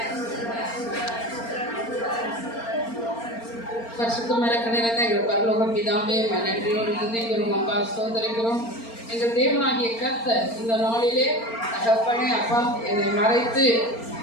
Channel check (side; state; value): right; late; 4.4 ms